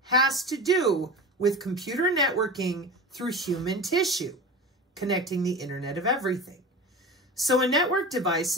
has to do with computer networking through human tissue, connecting the Internet of Everything. So a network device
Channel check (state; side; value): normal; both; correlation 0.31